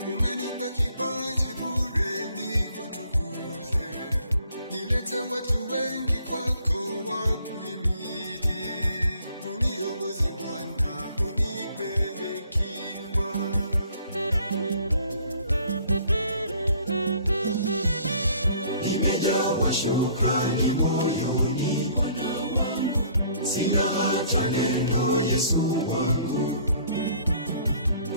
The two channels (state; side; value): inverted; both; correlation -0.59